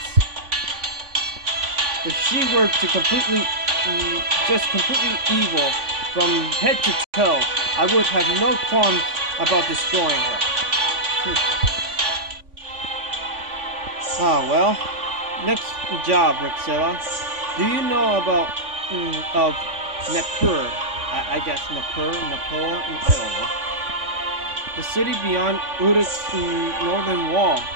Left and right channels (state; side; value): late; left; 3.5 ms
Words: If she were to completely evil from head to toe, I would have no qualms about destroying her. Ah, well. Next job, Rixilla. Do you know about, of Nippur? I guess Nippur, I don't know. The city beyond Uruk's northern wall,